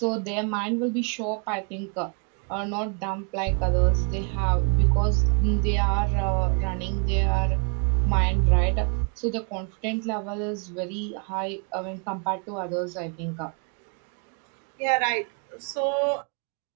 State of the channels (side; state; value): left; quieter; 37.5 dB